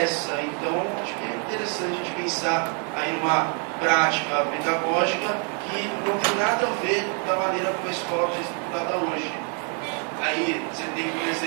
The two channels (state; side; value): quieter; left; 39.8 dB